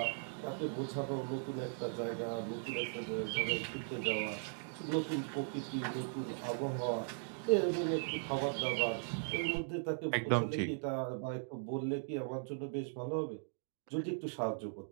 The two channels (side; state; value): left; silent; digital silence